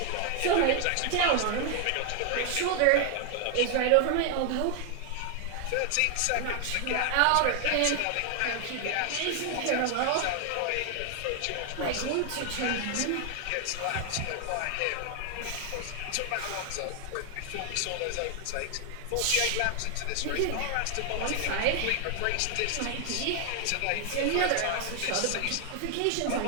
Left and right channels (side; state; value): both; different; correlation 0.00